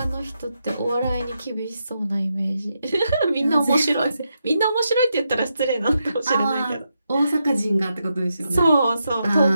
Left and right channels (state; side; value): inverted; both; correlation -0.84